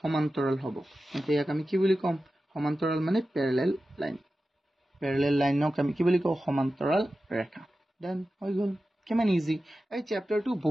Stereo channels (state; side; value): normal; both; correlation 0.93